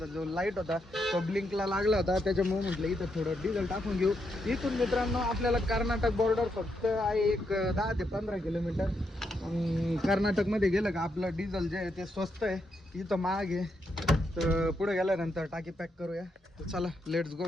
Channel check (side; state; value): both; normal; correlation 0.80